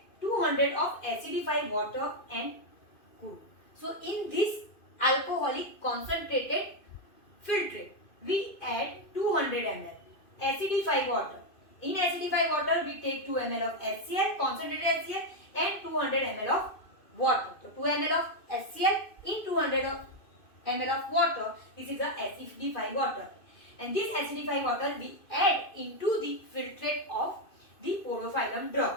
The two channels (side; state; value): right; late; 2.5 ms